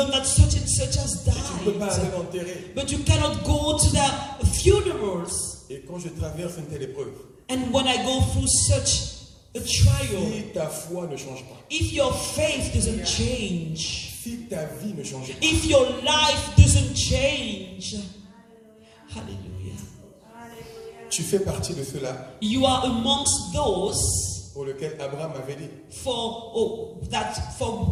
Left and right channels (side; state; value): both; identical; correlation 1.00